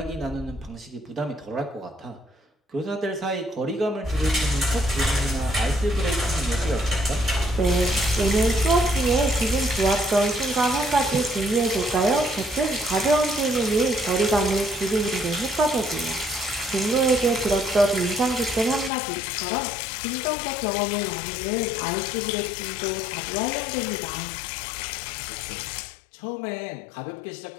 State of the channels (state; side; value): drops out; right; at 18.9 s